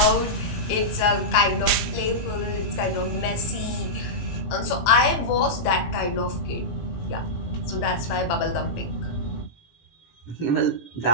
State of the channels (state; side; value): late; right; 18 ms